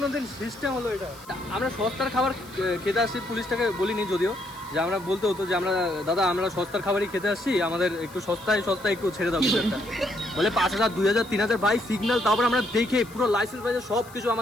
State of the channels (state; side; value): noise; left; hiss, 22 dB below the sound